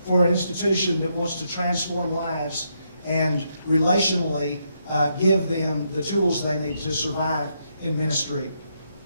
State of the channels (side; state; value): both; inverted; correlation -0.78